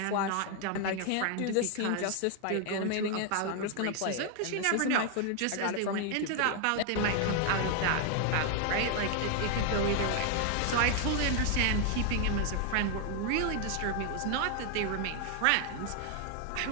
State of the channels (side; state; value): both; different; correlation 0.00